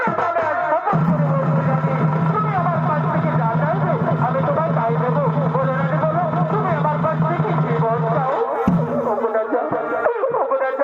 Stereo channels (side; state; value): both; identical; correlation 1.00